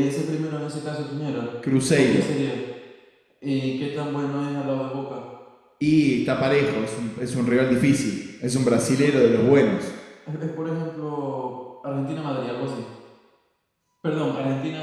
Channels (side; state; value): both; identical; correlation 1.00